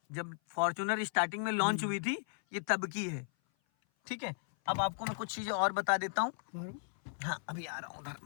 जब फॉर्च्यूनर स्टार्टिंग में लॉन्च हुई थी ये तब की है, ठीक है। अब आपको मैं कुछ चीजें और बता देता हूँ। हाँ अभी आ रहा हूँ उधर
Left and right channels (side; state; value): right; silent; 54 dB below the other